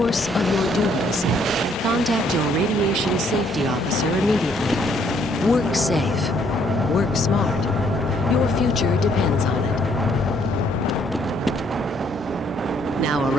of your duties, contact your radiation safety officer immediately. Work safe. Work smart. Your future depends on it. Now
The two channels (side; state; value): both; normal; correlation 0.67